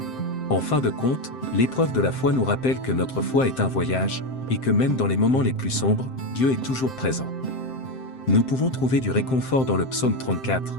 En fin de compte, l'épreuve de la foi nous rappelle que notre foi est un voyage, et que même dans les moments les plus sombres, Dieu est toujours présent. Nous pouvons trouver du réconfort dans le psaume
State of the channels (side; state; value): right; late; 7.7 ms